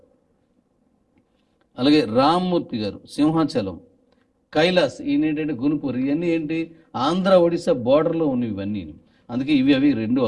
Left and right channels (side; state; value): both; identical; correlation 1.00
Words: అలాగే రామ్మూర్తి గారు సింహాచలం, కైలాస్ ఈయన ఏంటంటే గునుపూర్. ఇవన్నీ ఏంటి ఆంధ్ర ఒడిశా బోర్డర్లో ఉన్నవి ఇవన్నీ, అందుకే ఇవి అవి రెండు